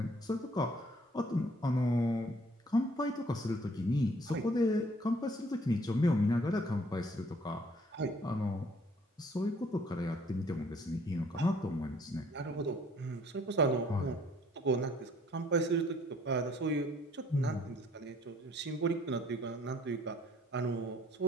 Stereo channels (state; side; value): normal; both; correlation 0.60